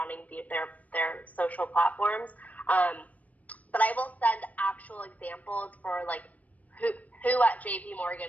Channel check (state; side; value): late; right; 0.072 ms